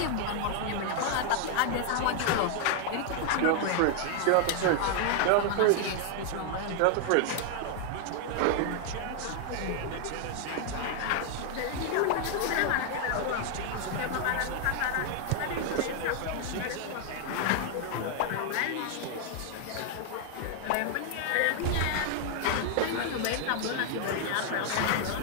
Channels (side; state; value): both; different; correlation 0.00